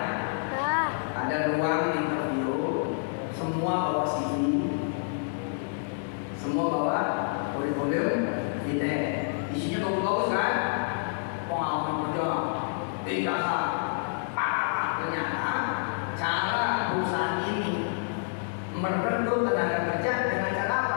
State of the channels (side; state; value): right; silent; digital silence